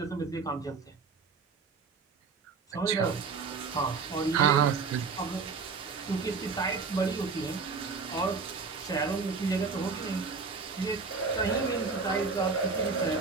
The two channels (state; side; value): quieter; left; 4.8 dB